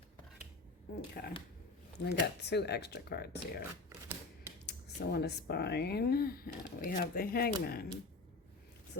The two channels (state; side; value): quieter; right; 3.5 dB